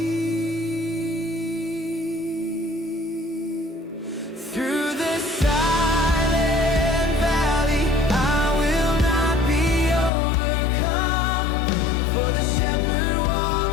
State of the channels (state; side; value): drops out; right; at 10.1 s